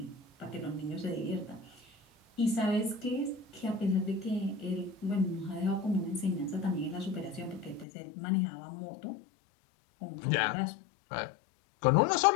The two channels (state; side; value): drops out; right; at 7.9 s